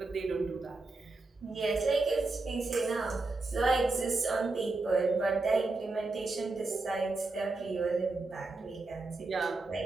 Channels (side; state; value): left; quieter; 3.4 dB